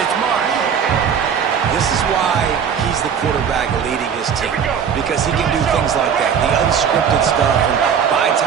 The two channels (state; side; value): quieter; left; 7.4 dB